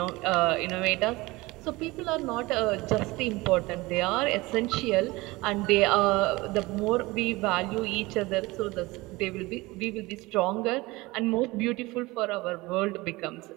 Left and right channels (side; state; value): left; quieter; 21.6 dB